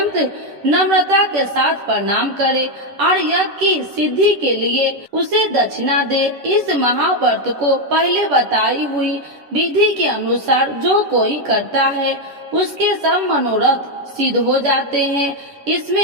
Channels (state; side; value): late; left; 10 ms